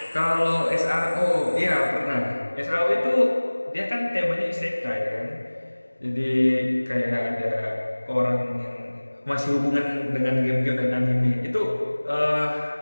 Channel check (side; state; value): both; inverted; correlation -1.00